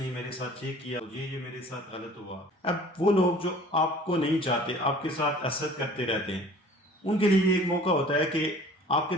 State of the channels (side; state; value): both; normal; correlation 0.48